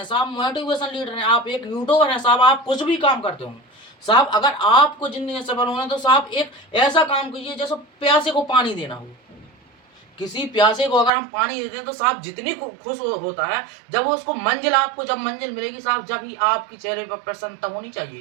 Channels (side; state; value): left; drops out; at 11.1 s